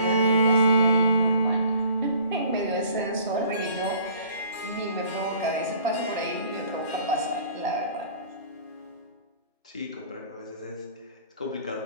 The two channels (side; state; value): both; inverted; correlation -0.52